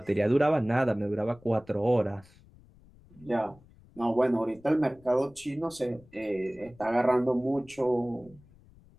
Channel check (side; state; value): left; noise; rumble, 26 dB below the sound